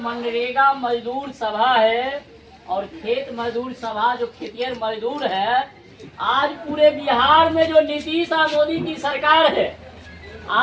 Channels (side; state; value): both; identical; correlation 1.00